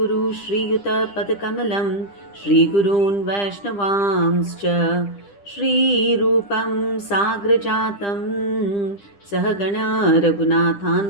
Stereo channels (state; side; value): late; right; 10 ms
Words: Shri Yuta Padakamalam Shri Gurun Vaishnavamscha Shri Rupam Sagrajatam Sahagana